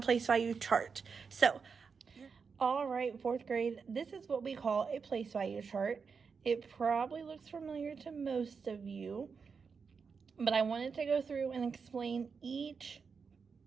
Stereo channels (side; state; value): left; quieter; 5.5 dB